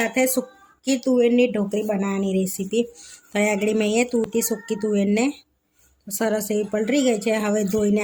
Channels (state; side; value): identical; both; correlation 1.00